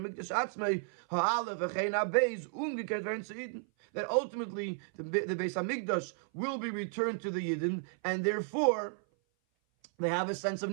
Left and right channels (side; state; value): left; silent; 55 dB below the other